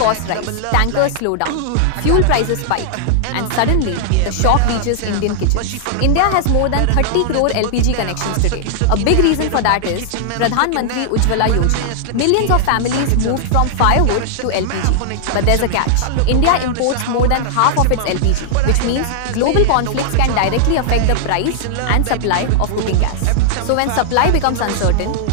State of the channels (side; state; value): both; different; correlation -0.01